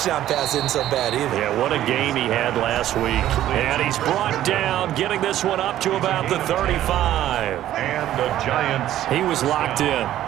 pass isn't so bad either. Yeah, what a game he had last week. And he's brought down, getting this one up to about the 35. And the Giants. He was locked in.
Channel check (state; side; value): quieter; left; 12.8 dB